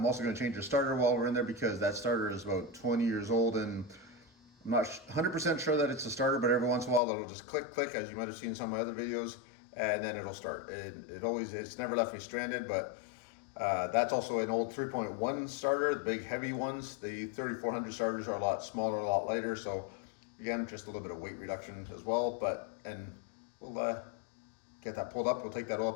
also gonna change the starter while we're in there because that starter is about 20 years old and I'm not 100% sure that it's a starter, but every once in a while it'll just click, click, as you might have seen in some of my other videos, and then it'll start. It's never left me stranded, but that's also an old 3.1 starter, the big heavy ones. The 3400 starters are a lot smaller, a lot lighter, so again, just a little bit of weight reduction as well. And we'll get that pulled up, we'll take that oil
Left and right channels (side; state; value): right; drops out; at 7.0 s